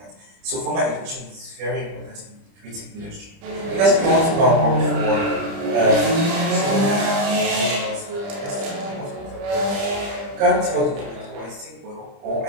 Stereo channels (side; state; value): left; late; 30 ms